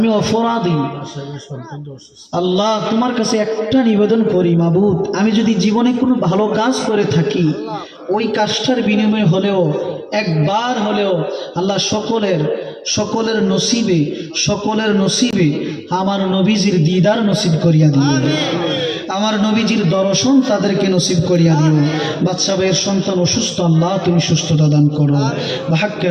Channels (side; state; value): both; identical; correlation 1.00